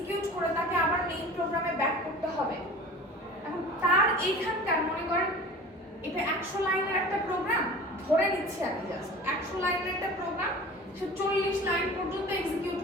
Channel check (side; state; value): both; normal; correlation 0.39